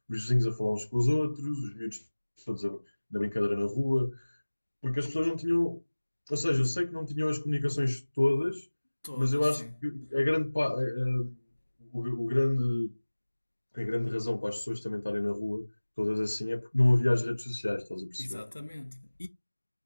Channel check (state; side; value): inverted; both; correlation -1.00